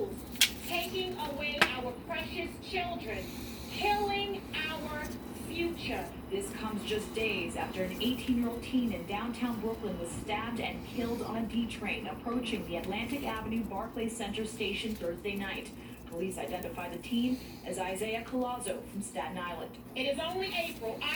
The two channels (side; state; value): both; identical; correlation 1.00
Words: taking away our precious children, killing our future. This comes just days after an 18-year-old teen in downtown Brooklyn was stabbed and killed on a D train approaching the Atlantic Avenue Barclays Center station Thursday night. Police identified the teen as Isaiah Collazo from Staten Island. It is only April.